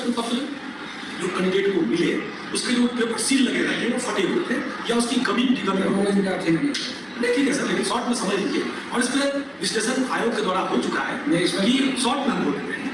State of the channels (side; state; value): both; identical; correlation 1.00